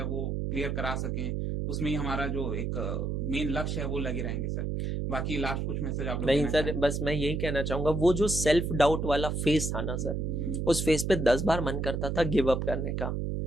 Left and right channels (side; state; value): right; noise; hum, 1 dB below the sound